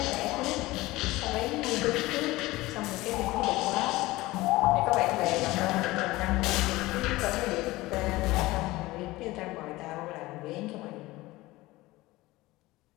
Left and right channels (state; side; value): quieter; right; 19.3 dB